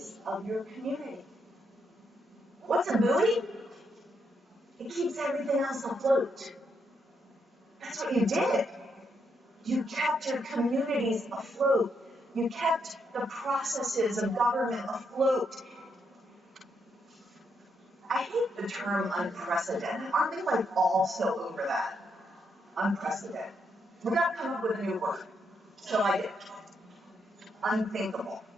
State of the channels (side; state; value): both; normal; correlation 0.78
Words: of your community. What's a buoy? It keeps everything else afloat. That's what you did. You kept your communities afloat. You kept the processes of government afloat. I hate the term unprecedented. Aren't we like all so over that? Unprecedented. We got to come up with a new word. So I did. Unthinkable.